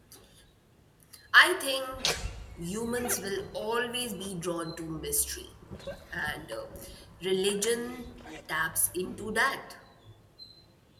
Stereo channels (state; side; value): identical; both; correlation 1.00